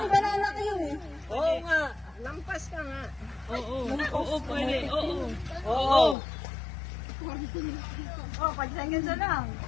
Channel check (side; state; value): right; drops out; at 6.2 s